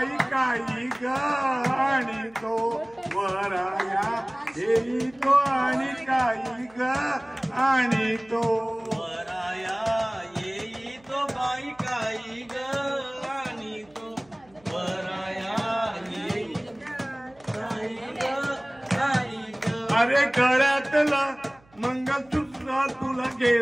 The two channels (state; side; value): noise; right; hum, 30 dB below the sound